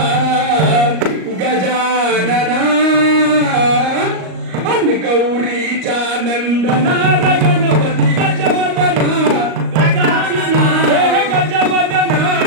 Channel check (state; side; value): late; left; 38 ms